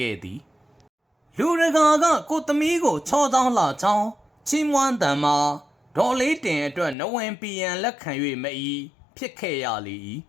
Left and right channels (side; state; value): right; drops out; at 7.0 s